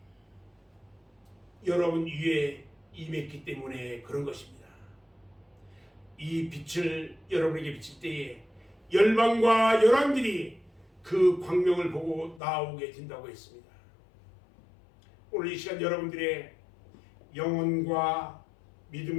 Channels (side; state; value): right; drops out; at 12.4 s